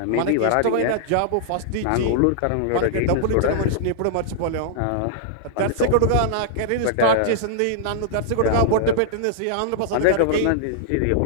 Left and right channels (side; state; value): both; different; correlation -0.01